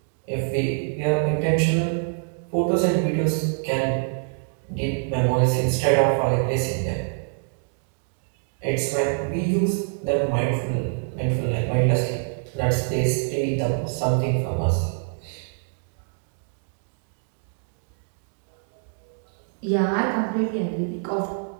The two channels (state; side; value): silent; left; 61 dB below the other